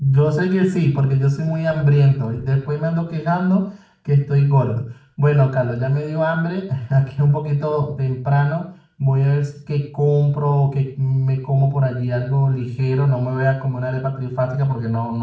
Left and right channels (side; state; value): both; identical; correlation 1.00